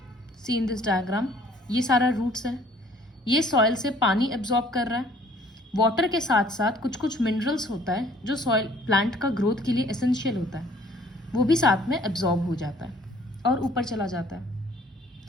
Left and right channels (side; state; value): both; normal; correlation 0.57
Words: see in this diagram, ये सारा roots है. ये soil से पानी absorb कर रहा है. Water के साथ साथ कुछ कुछ मिनरल्स होता है जो सॉइल प्लांट का ग्रोथ के लिए एसेंशियल होता है, वो भी साथ में एब्जॉर्ब हो जाता है और ऊपर चला जाता है.